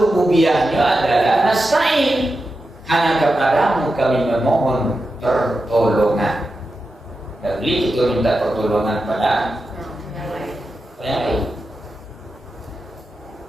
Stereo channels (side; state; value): both; normal; correlation 0.90